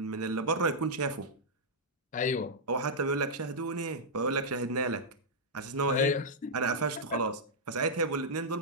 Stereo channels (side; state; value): both; normal; correlation -0.08